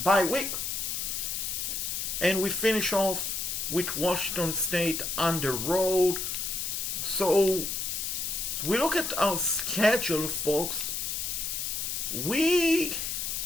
bye week, and we finish off with Washington State on the road. So we look at our schedule, folks. It's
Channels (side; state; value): left; noise; hiss, 2 dB below the sound